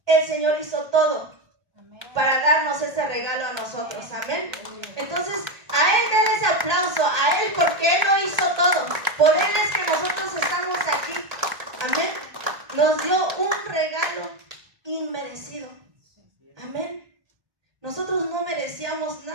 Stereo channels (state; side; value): late; left; 1.8 ms